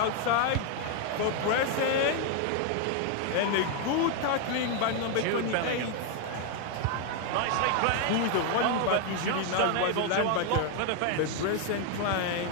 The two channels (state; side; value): different; both; correlation 0.00